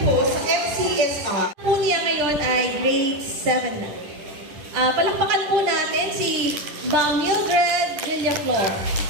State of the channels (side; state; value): left; late; 10 ms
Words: sa FCSR. Po niya ngayon ay grade 7 na. Palakpakan po natin si Ma'am Mildred Villaflor.